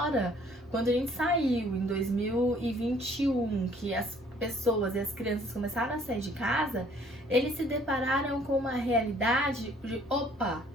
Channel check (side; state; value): both; normal; correlation 0.59